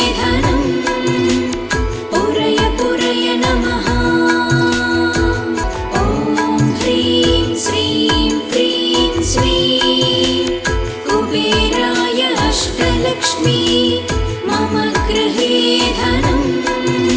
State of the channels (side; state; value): both; identical; correlation 1.00